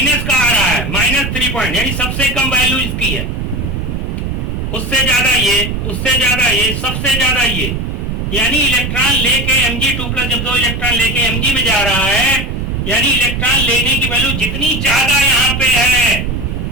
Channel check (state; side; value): noise; right; rumble, 3 dB below the sound